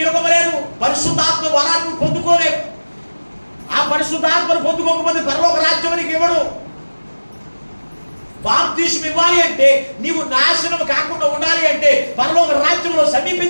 లేదు. పరిశుద్ధాత్మ వరాన్ని పొందుకోలేవు. ఆ పరిశుద్ధాత్మను పొందుకోకపోతే పరలోక రాజ్యానికి ఇవ్వడు. బాప్తిస్మం ఇవ్వాలి అంటే, నీవు నాశనం కాకుండా ఉండాలి అంటే, పరలోక రాజ్యంలో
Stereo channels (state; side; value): inverted; both; correlation -1.00